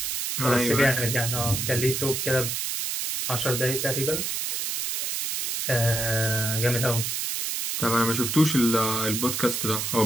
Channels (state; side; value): noise; right; hiss, 2 dB below the sound